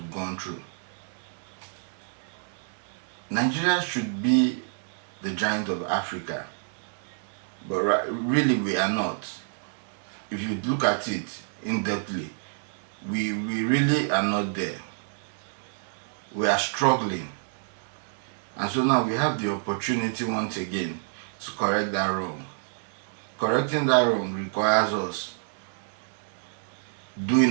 gone through. Nigeria should be the giant of Africa, but really we are not. If you look at it in-depthly, we really are not there. We are struggling. And so now we have the opportunity once again to correct that wrong. Correcting that wrong requires us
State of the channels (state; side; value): silent; left; digital silence